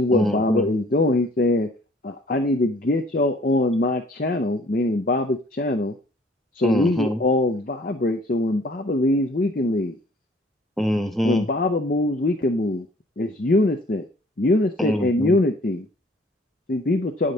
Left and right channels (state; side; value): normal; both; correlation 0.56